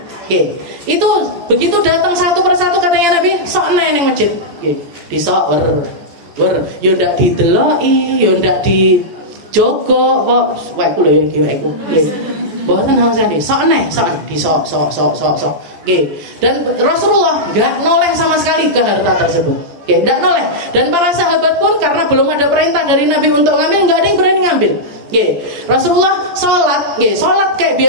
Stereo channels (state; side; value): late; left; 14 ms